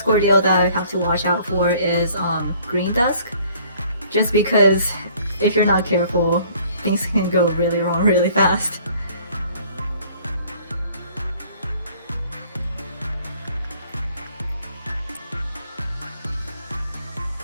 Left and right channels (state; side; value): inverted; both; correlation -0.57